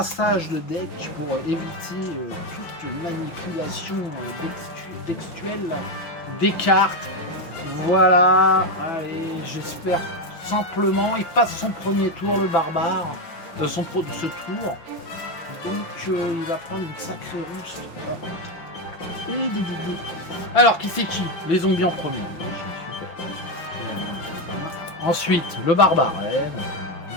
de deck pour éviter toute manipulation textuelle des cartes. Voilà, allez, j'espère simplement, il passe son premier tour, le barbare, ce tour, donc il va prendre une sacrée russe. Alors, qui c'est qui? Les zombies en premier. Ensuite, le barbare.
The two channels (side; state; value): right; late; 5.7 ms